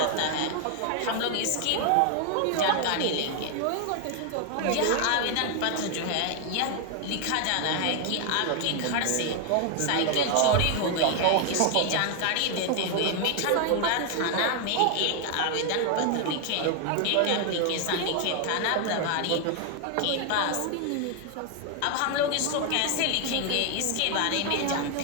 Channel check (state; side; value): different; both; correlation 0.00